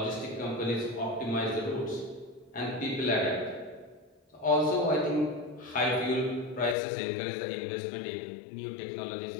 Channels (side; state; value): right; drops out; at 6.8 s